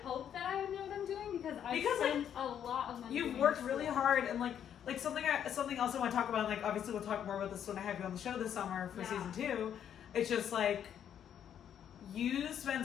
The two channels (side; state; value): right; quieter; 9.3 dB